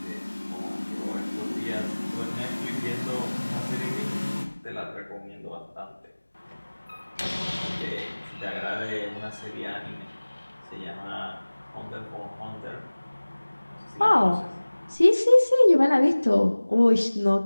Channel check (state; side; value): inverted; both; correlation -1.00